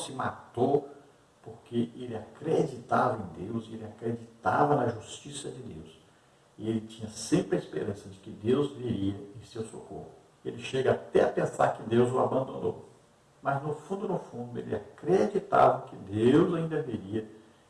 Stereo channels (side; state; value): both; identical; correlation 1.00